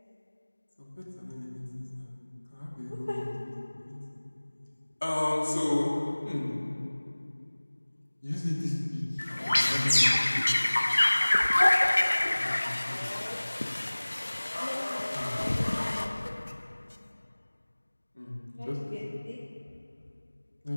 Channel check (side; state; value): both; inverted; correlation -1.00